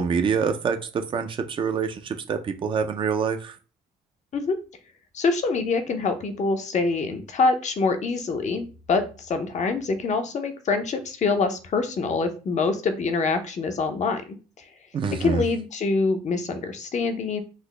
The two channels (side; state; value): both; normal; correlation 0.53